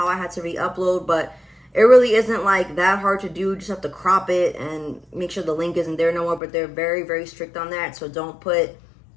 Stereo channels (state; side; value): drops out; right; at 6.4 s